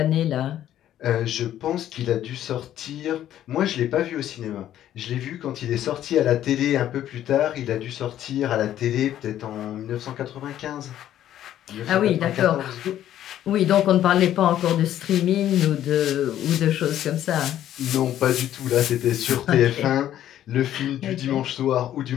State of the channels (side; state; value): right; quieter; 11.8 dB